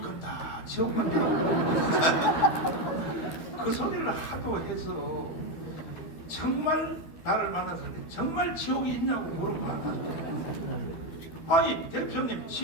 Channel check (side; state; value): right; late; 12 ms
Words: 간다 그 소리를 하도 해서 정말 나를 만나서 정말 지옥이 있냐고 물어봐. 아니 대표님,